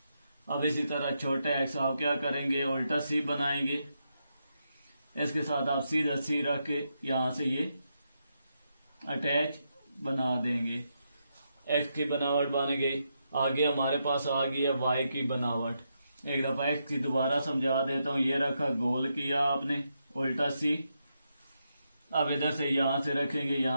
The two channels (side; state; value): both; inverted; correlation -0.83